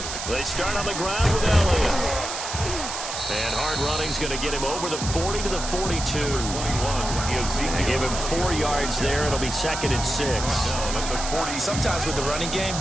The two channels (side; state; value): right; noise; hiss, 6 dB below the sound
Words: They start on the ground with Elliott. And hard running's going to get him over the 40 to the 42. They give him 4 yards there. It'll be 2nd and 6. Sometimes with the running game,